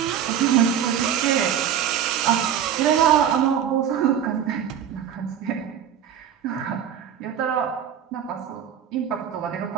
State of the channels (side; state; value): left; quieter; 9.2 dB